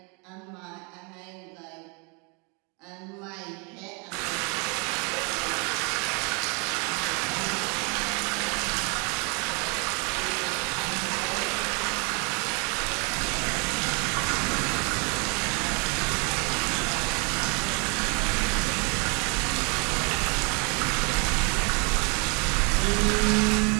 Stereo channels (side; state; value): left; quieter; 32.9 dB